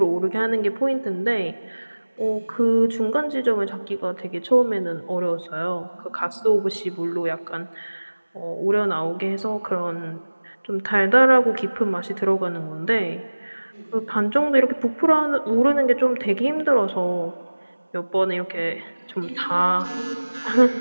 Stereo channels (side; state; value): both; inverted; correlation -1.00